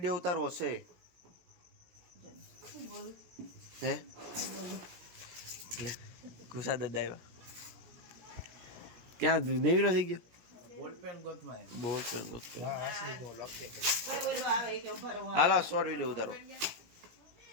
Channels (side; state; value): left; late; 17 ms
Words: ઉતારવો છે હે લે ગુસા દાદા આવ્યા ક્યાં નેવીનો થઈ ગયો બોલપેન ગોતમાં બોલ પેન ગોત આસરી બહુ લખે કોઈ બોલવા આવે કે ભરો હાલો શોર્ટ વિડીયો ઉતારો